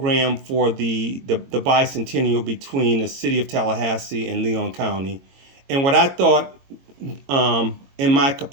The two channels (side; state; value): left; late; 22 ms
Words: for the bicentennial between the city of Tallahassee and Leon County. And what I thought, in my